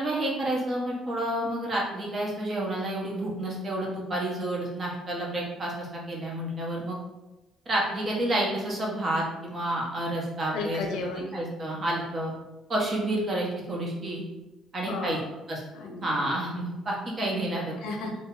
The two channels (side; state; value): both; normal; correlation 0.65